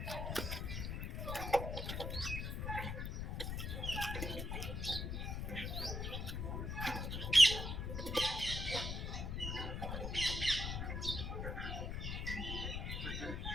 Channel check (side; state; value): left; noise; rumble, 2 dB below the sound